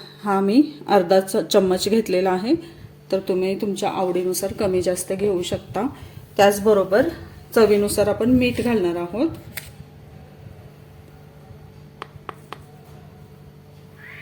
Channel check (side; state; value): both; identical; correlation 1.00